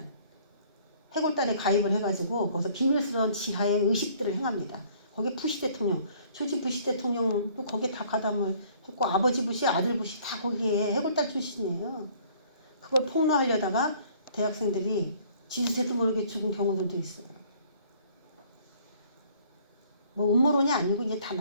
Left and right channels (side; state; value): both; inverted; correlation -0.57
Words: 해골단에 가입을 해가지고 거기서 비밀스러운 지하의 의식들을 행합니다. 거기에 부시 대통령, 조지 부시 대통령도 거기에 다 가담을 했고 아버지 부시, 아들 부시 다 거기에 해골단 출신이에요. 그걸 폭로하려다가 대학생들이 지지세도 모르게 죽은 경우들도 있어요. 뭐 음모론이 아니고 이제 다